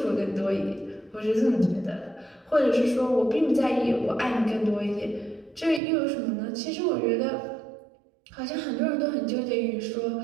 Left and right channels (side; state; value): left; drops out; at 5.8 s